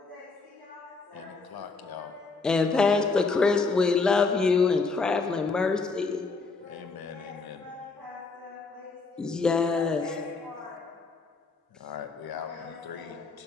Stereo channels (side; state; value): right; quieter; 4.2 dB